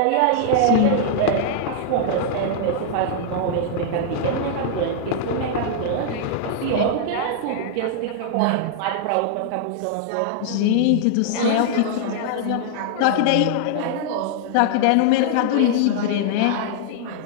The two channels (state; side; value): different; both; correlation -0.01